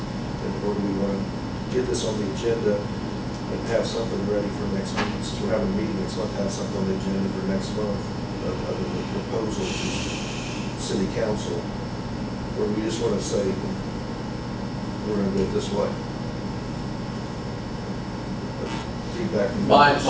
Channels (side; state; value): both; identical; correlation 1.00